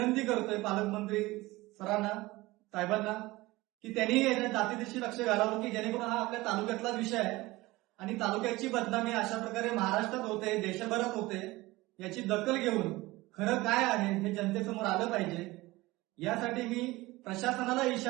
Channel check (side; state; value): left; quieter; 20.1 dB